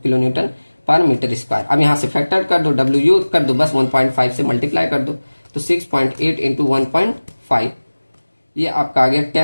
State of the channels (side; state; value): both; inverted; correlation -1.00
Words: किलो न्यूटन पर मीटर स्क्वायर। अब यहाँ से फैक्टर कर दो, W कर दो, बस 1.5 से मल्टीप्लाई कर दो। तो 6.8 इंटू 1.5, ये आपका आ गया